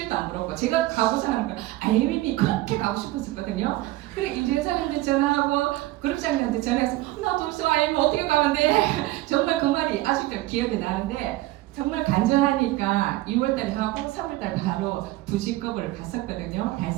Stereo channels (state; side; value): quieter; left; 17.4 dB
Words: 안 부러웠고 제가 가고자 하는 건 IM이 그렇게 가고 싶었었거든요. 그래 임재사님한테 전화하고 그룹장님한테 전화해서 나 벌써 IM 어떻게 가는데 정말 그 말이 아직도 기억이 나는데 정말 간절하니까 2월달에 하고 3월달 바로 2직급을 갔었거든요.